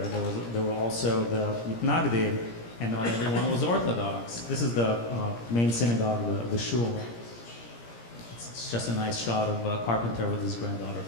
There were also the Mitnagdim, and not everyone was Orthodox. This is the main synagogue, the shul. It's just a nice shot of a carpenter with his granddaughter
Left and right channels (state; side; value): late; right; 17 ms